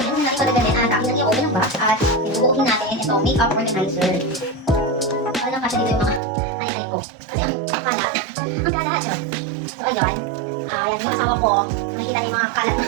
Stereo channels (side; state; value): left; drops out; at 6.2 s